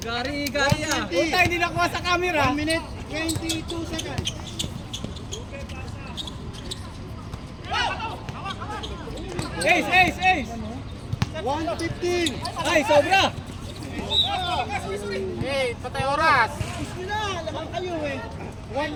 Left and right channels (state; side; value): identical; both; correlation 1.00